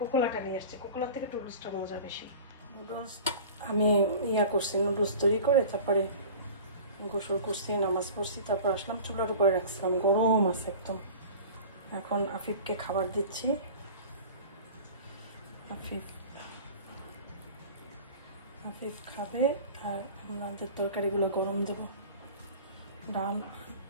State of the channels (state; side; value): inverted; both; correlation -0.39